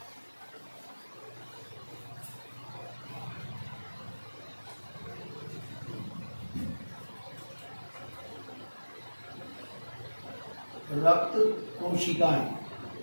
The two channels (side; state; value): both; inverted; correlation -1.00